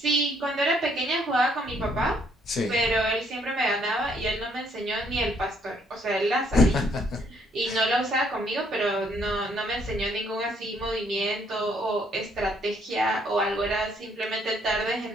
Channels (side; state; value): both; normal; correlation 0.67